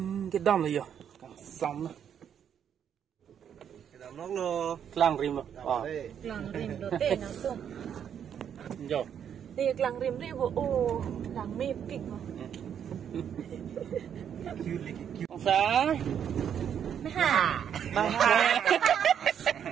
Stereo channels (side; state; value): left; quieter; 8.6 dB